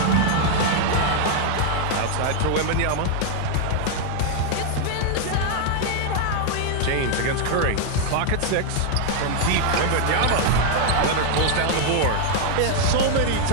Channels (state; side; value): different; both; correlation 0.00